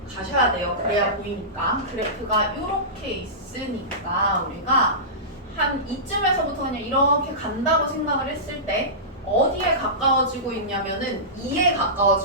가셔야 돼요. 그래야 보이니까 그래프가 이렇게 있으니까 우리가 한 이쯤에서부터 그냥 이렇게 간다고 생각을 했을 때 어디에 가까워지고 있냐면은 2에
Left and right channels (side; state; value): both; normal; correlation -0.20